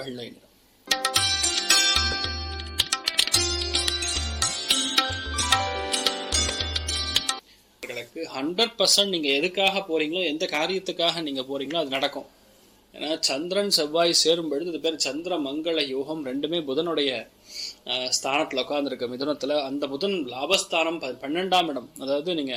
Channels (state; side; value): identical; both; correlation 1.00